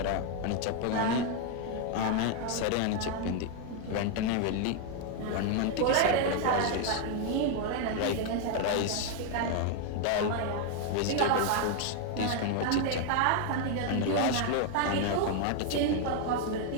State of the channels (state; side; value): different; both; correlation 0.00